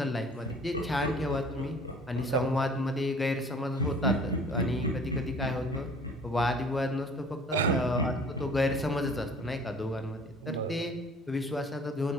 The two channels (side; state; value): both; normal; correlation 0.49